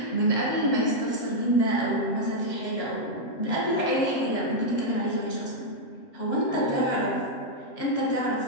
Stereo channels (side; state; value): right; late; 7.4 ms